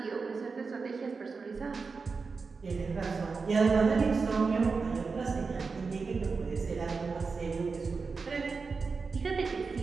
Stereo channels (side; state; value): left; quieter; 4.7 dB